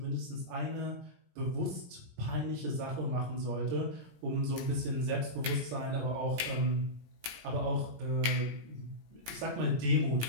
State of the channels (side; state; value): left; late; 17 ms